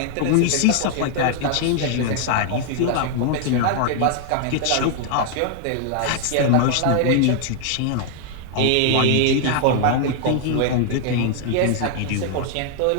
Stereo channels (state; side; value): different; both; correlation 0.00